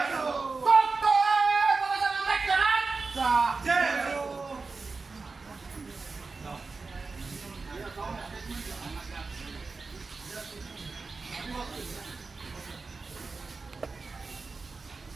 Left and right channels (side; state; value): left; quieter; 4.1 dB